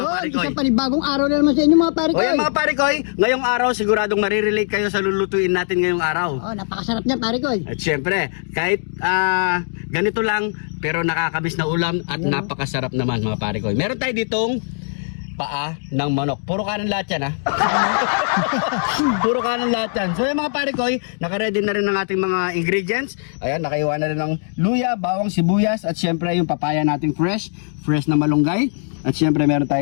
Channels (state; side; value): silent; right; digital silence